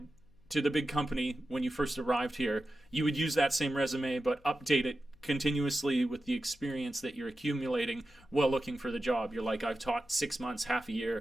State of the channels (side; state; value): left; noise; hum, 29 dB below the sound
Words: to the big company when you first arrived here, you would use that same resume, but update it continuously with the experience that you're accumulating while looking for the job. You're like, I've taught 6 months, half a